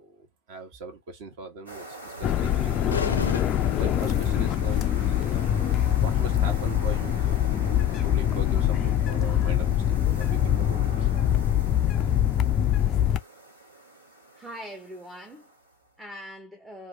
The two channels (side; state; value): right; quieter; 9.6 dB